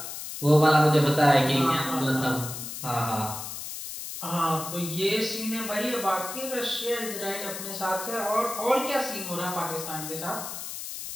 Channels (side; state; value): left; noise; hiss, 8 dB below the sound